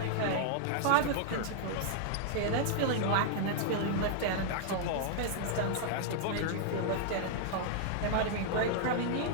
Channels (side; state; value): both; different; correlation -0.01